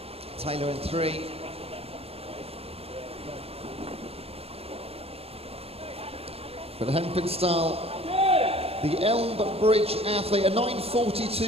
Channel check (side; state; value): left; late; 0.29 ms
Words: Taylor in 3. But Hampenstall, the Elmbridge athlete, a